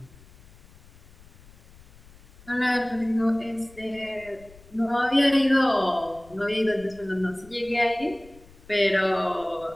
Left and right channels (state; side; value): noise; left; rumble, 24 dB below the sound